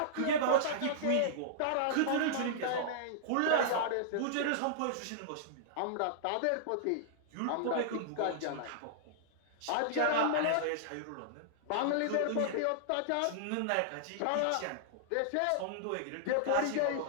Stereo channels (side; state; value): both; different; correlation -0.02